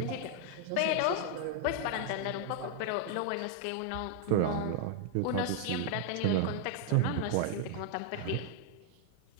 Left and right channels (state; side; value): different; both; correlation 0.00